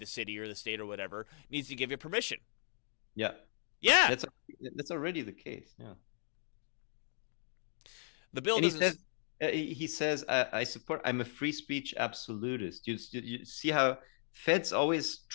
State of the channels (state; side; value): silent; right; digital silence